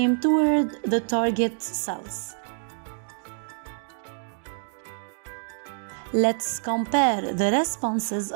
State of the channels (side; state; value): left; silent; digital silence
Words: toward the target cells. Let's compare the responses